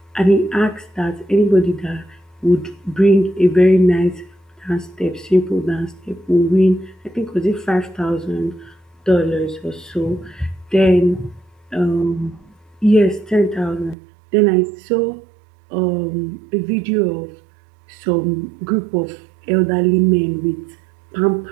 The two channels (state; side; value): drops out; left; at 14.0 s